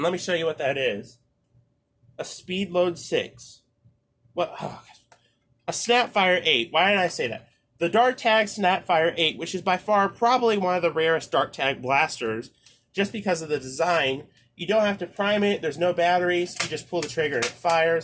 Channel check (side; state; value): both; identical; correlation 1.00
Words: let me show you what that is. A Speed Load 6. What? Oh, a Snapfire 8. Why did I say that? The Dart Tag Snapfire 8, which is by far probably one of the rarest Dart Tag blasters, just because of the design. You don't have to prime it, there's no batteries, you just pull the trigger and it